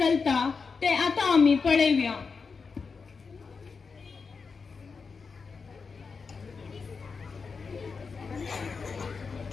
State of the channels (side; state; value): right; quieter; 5.0 dB